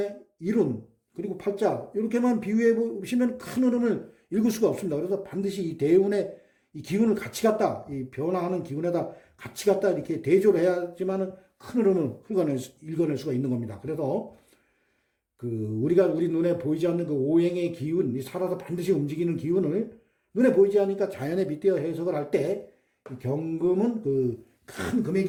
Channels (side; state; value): both; identical; correlation 1.00